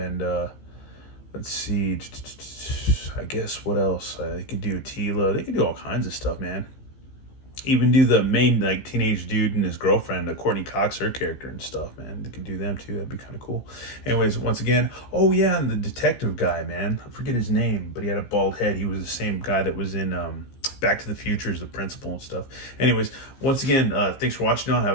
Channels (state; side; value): late; right; 15 ms